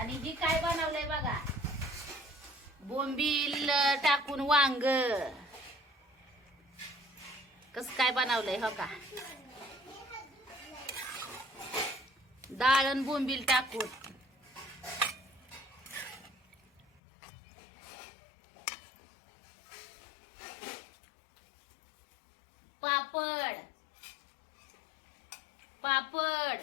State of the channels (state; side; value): drops out; right; at 17.0 s